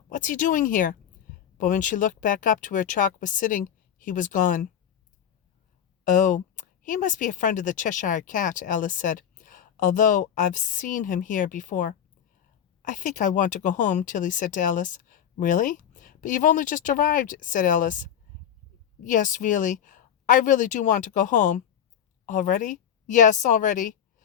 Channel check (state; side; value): quieter; right; 9.2 dB